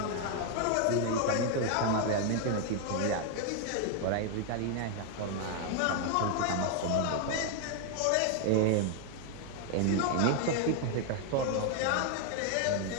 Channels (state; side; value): different; both; correlation 0.00